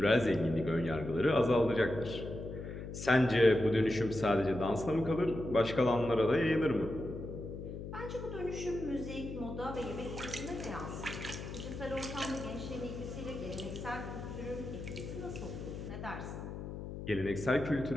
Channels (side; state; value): left; noise; hum, 8 dB below the sound